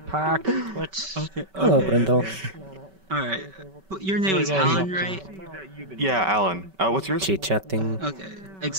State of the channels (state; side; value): late; left; 5.2 ms